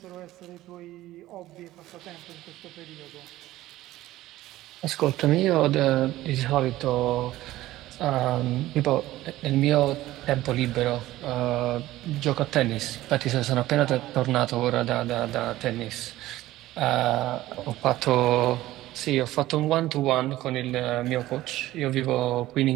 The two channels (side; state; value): left; quieter; 15.9 dB